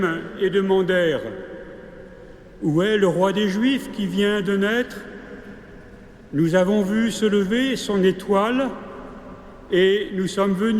et demandèrent « Où est le roi des Juifs qui vient de naître ? Nous avons vu se lever son étoile et nous sommes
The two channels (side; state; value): both; identical; correlation 1.00